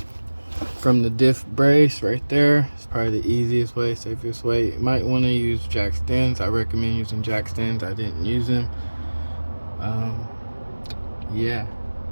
from the diff brace right there. It's probably the easiest way, safest way. You might want to use jack stands. I recommend using jack stands. I didn't use them. Yeah,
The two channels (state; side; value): inverted; both; correlation -1.00